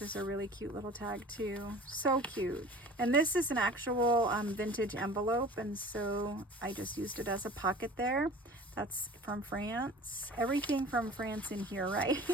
a really cute little tag too. So cute. And this is an actual vintage envelope, and so I just used it as a pocket there. That's from France. Everything from France in here, right?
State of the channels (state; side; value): normal; both; correlation 0.42